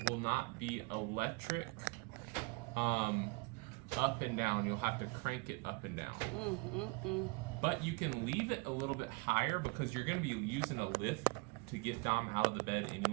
will not be electric up and down. You'll have to crank it up and down. But you can leave it a little bit higher because you're going to be using a lift to get Dom out of the bed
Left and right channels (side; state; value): left; quieter; 28.1 dB